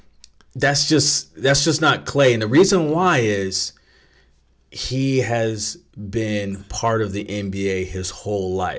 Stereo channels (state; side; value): identical; both; correlation 1.00